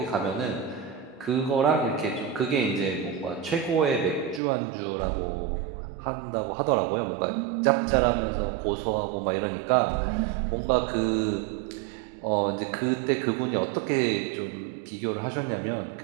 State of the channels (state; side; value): drops out; left; at 4.4 s